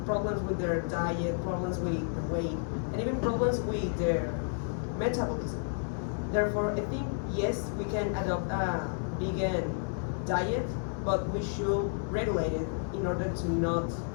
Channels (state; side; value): silent; right; digital silence